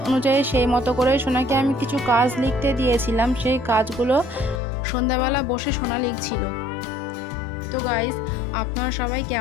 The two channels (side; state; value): right; drops out; at 4.6 s